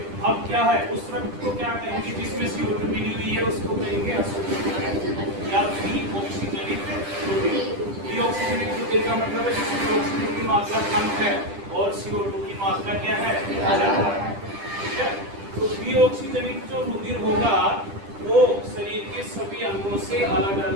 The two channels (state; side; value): late; left; 10 ms